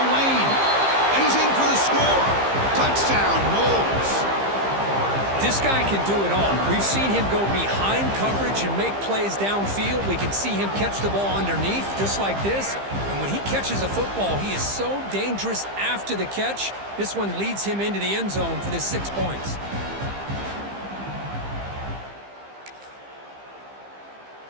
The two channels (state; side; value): late; left; 15 ms